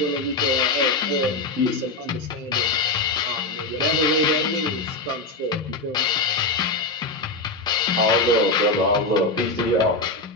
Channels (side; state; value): right; quieter; 3.1 dB